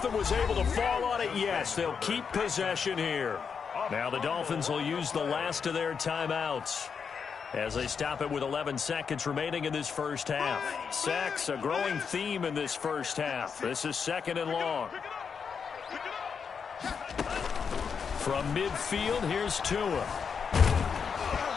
was able to fall on it. Yes, they'll keep possession here. Now the Dolphins will use the last of their timeouts as they stop it with 11 seconds remaining in this first half. Sacks, a growing theme in this first half. This is second and long. From midfield, here's Tua.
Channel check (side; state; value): right; quieter; 6.2 dB